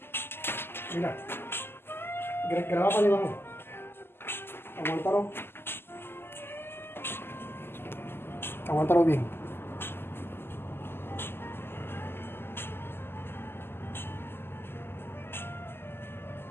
Mira. Graba para abajo. Aguántalo. Aguántalo bien.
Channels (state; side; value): late; right; 0.11 ms